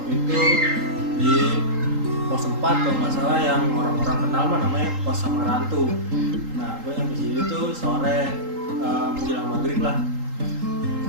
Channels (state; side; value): late; left; 3.8 ms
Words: itu di pos 4 kalau nggak salah, yang orang-orang kenal mah namanya pos Samarantu. Nah, gue yang di situ tuh sore menjelang maghrib lah.